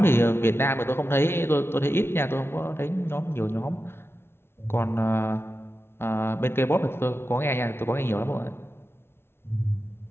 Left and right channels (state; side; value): late; right; 0.12 ms